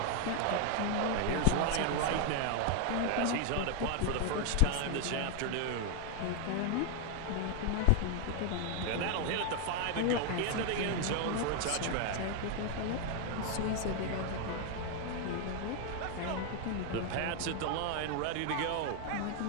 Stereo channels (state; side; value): different; both; correlation 0.01